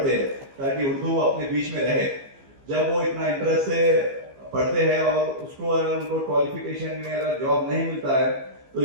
हैं, ताकि उर्दू अपने बीच में रहे। जब वो इतना इंटरेस्ट से पढ़ते हैं और उसको अगर उनको क्वालिफिकेशन में अगर जॉब नहीं मिलता है तो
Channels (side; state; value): left; late; 15 ms